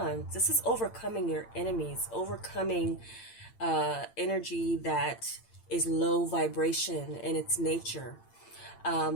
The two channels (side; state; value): right; late; 8.8 ms